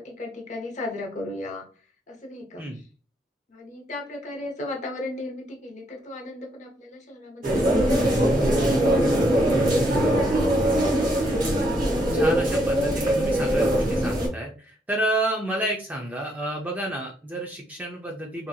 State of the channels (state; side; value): normal; both; correlation 0.73